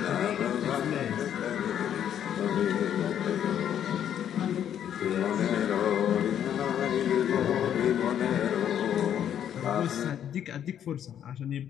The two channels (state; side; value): quieter; right; 9.7 dB